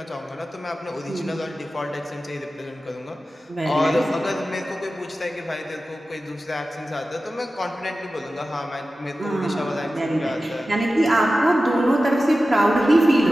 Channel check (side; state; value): both; normal; correlation 0.94